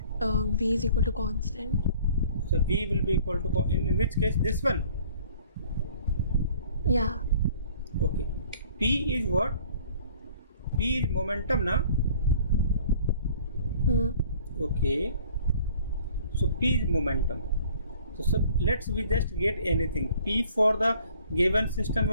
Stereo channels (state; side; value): inverted; both; correlation -0.54